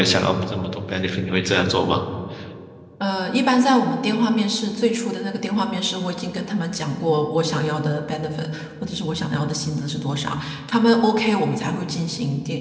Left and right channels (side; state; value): both; identical; correlation 1.00